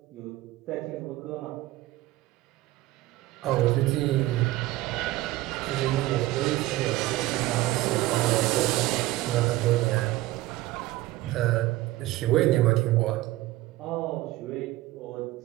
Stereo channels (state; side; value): quieter; left; 17.2 dB